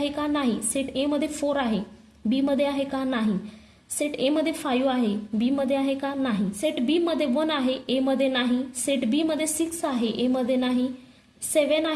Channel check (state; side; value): identical; both; correlation 1.00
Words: का? नाही. सेट ए मध्ये 4 आहे, बी मध्ये आहे का? नाही. सेट ए मध्ये 5 आहे, बी मध्ये आहे का? नाही. सेट बी मध्ये 1 आहे, ए मध्ये नाही. सेट बी मध्ये 6 आहे, ए मध्ये नाही. 7